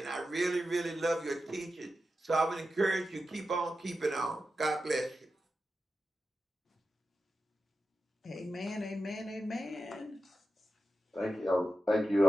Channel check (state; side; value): normal; both; correlation 0.90